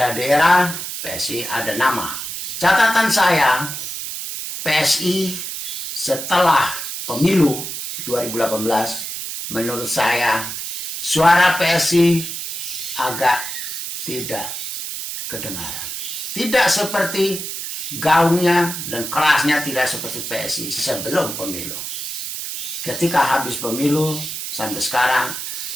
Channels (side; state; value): right; noise; hiss, 6 dB below the sound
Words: PSI ada nama. Catatan saya, PSI setelah pemilu 2018, menurut saya suara PSI agak tidak kedengaran. Tidak seperti gaungnya dan kerasnya, tidak seperti PSI sebelum pemilu. Ketika habis pemilu sampai sekarang,